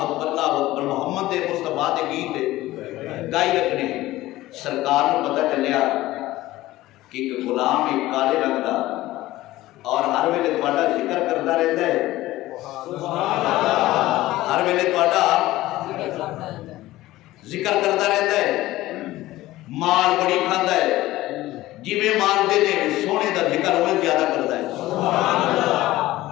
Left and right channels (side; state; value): right; quieter; 16.8 dB